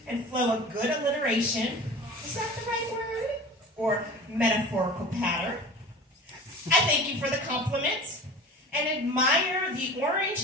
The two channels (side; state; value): both; normal; correlation 0.38